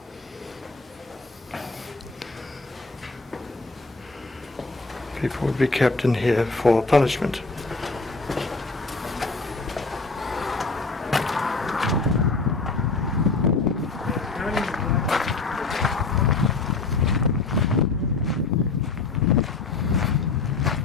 People would be kept in here for punishment.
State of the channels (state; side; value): quieter; right; 3.9 dB